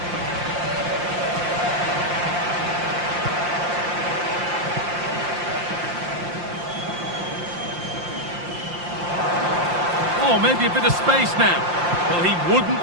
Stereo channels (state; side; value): late; left; 5.7 ms